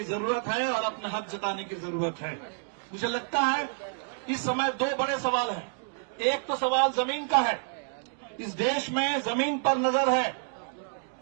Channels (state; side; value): silent; left; 59 dB below the other